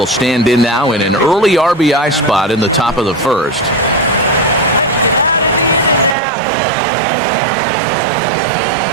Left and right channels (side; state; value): left; drops out; at 6.2 s